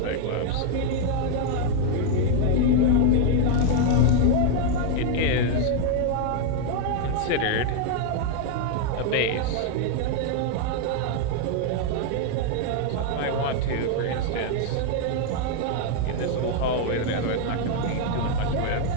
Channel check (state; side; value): different; both; correlation 0.00